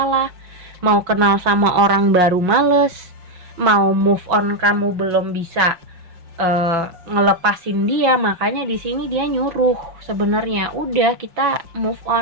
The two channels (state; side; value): late; left; 5.6 ms